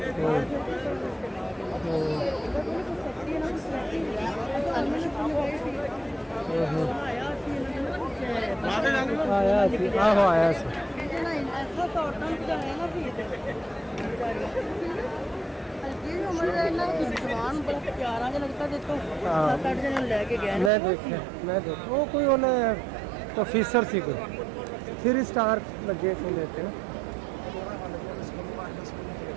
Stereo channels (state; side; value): drops out; left; at 20.7 s